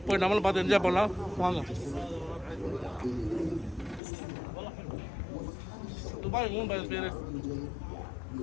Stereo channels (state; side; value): drops out; right; at 4.0 s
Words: போய் நம்மளும் பார்த்து என்ஜாய் பண்ணலாம், வாங்க. துபாய் மூணு பேர்